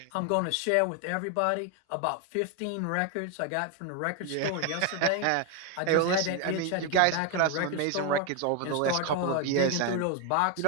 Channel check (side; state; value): both; different; correlation 0.01